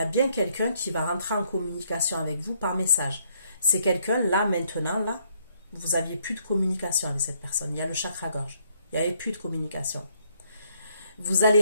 bien quelqu'un qui va rentrer en communication avec vous par message. C'est quelqu'un, là, maintenant, là, vous n'aviez plus de communication avec cette personne. Il y a le chakra-gorge. Il n'y avait plus de communication. Vous allez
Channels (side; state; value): both; inverted; correlation -0.70